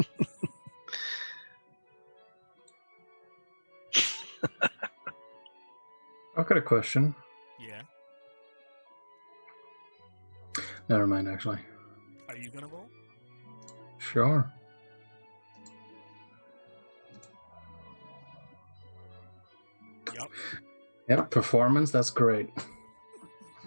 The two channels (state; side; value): inverted; both; correlation -1.00